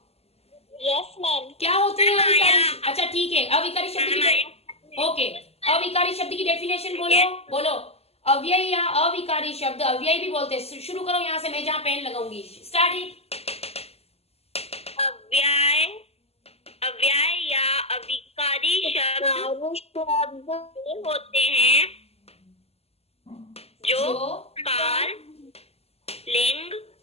Yes ma'am. क्या होते हैं मैम, अविकारी? आया। अच्छा ठीक है, अविकारी शब्द मैम, की ओके, अविकारी शब्द की डेफिनेशन बोलो। बोलो अव्यय या अविकारी शब्द, अव्यय भी बोलते हैं। शुरू करो यहाँ से, मैं जहाँ पेन लगाऊंगी। Start it. अव्यय, अव्यय या अविकारी शब्द होते हैं जो काल, लिंग,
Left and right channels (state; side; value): late; right; 0.29 ms